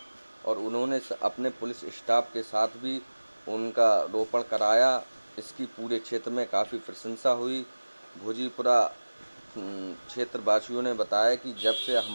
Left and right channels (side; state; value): both; inverted; correlation -1.00